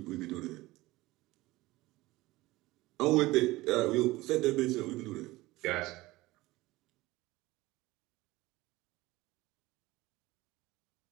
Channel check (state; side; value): quieter; left; 19.2 dB